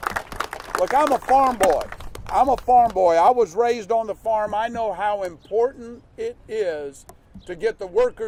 Look, I'm a farm boy. I was raised on the farm. I know how important it is to get the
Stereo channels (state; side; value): identical; both; correlation 1.00